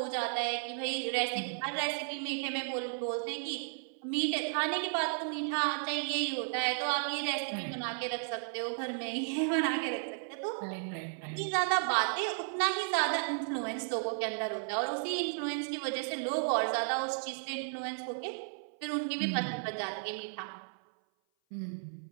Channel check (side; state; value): left; silent; 55 dB below the other